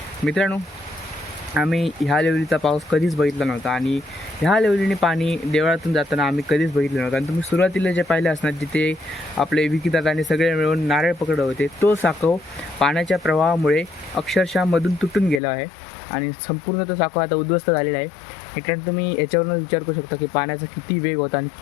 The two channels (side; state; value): right; drops out; at 15.4 s